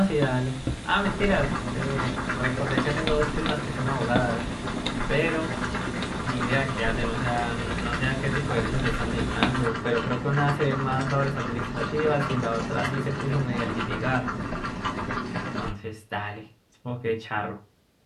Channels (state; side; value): identical; both; correlation 1.00